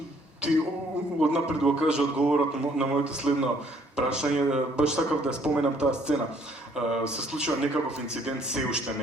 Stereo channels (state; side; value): normal; both; correlation 0.63